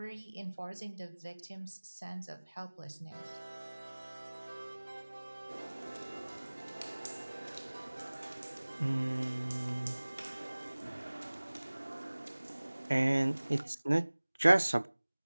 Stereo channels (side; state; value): both; inverted; correlation -1.00